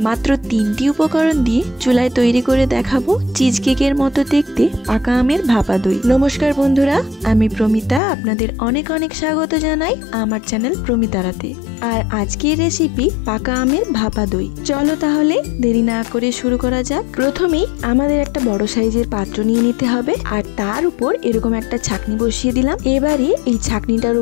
3টি উপকরণ দিয়ে চুলায় তৈরি করে দেখাবো চিজ কেকের মতো দেখতে পাকা আমের ভাপা দই। নমস্কার বন্ধুরা, আমি প্রমিতা, আপনাদের অনেক অনেক স্বাগত জানাই আমার চ্যানেল প্রমিতারাতে। আর আজকের রেসিপি পাকা আমের ভাপা দই। চলো তাহলে দেরি না করে শুরু করা যাক। প্রথমেই আমাদের একটা বড় সাইজের পাত্র নিয়ে নিতে হবে, আর তার উপর এরকম একটা ছাঁকনি বসিয়ে দিলাম। এবারে এই ছাঁকনিটার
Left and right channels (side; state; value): right; drops out; at 8.0 s